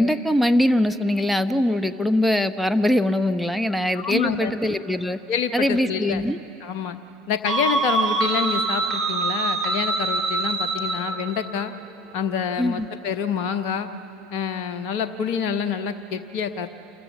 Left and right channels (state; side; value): normal; both; correlation 0.64